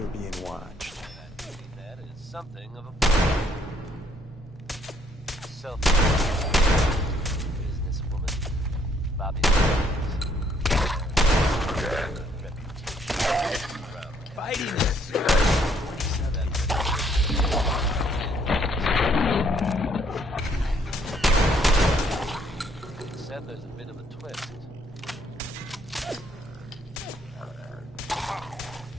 being watched. That is something of a self businesswoman. Bobby. Fighting this. Said there's a bit of a twist.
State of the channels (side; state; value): both; normal; correlation 0.66